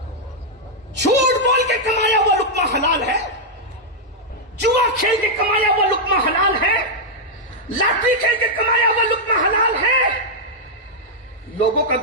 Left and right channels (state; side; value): normal; both; correlation -0.04